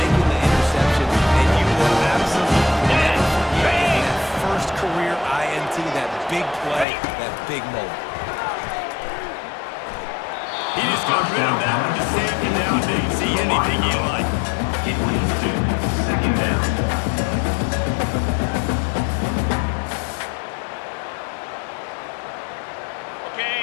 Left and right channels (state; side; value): drops out; right; at 6.9 s